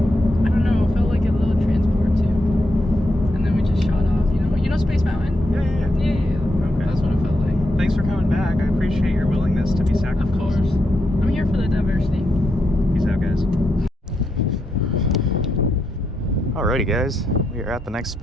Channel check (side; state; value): both; normal; correlation 0.83